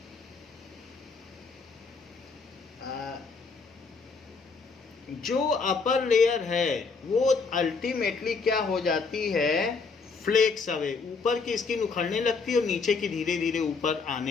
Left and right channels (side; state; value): right; quieter; 4.7 dB